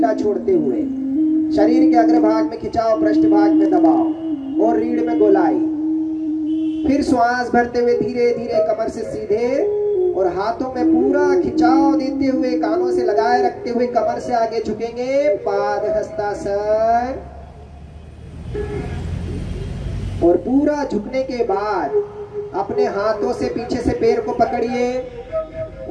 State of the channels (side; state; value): both; identical; correlation 1.00